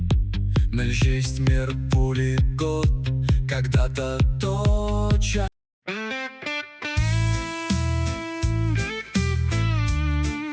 Мельчесть мир пули год, когда-то точа.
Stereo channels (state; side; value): identical; both; correlation 1.00